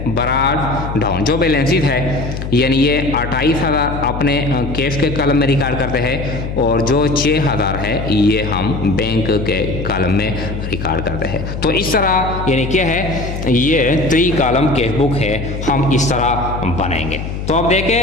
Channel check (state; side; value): noise; left; hum, 6 dB below the sound